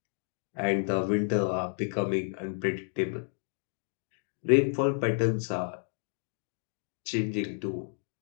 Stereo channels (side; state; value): right; silent; 57 dB below the other